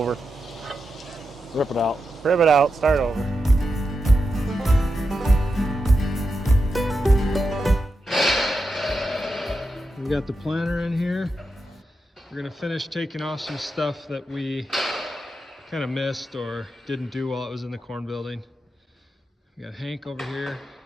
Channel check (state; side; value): normal; both; correlation 0.88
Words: Rip it out. Rip it out, start over. We got the planter in here. We're gonna finish taking off some stuff that we kind of missed or didn't do while it was in the corn building. We got Hank over here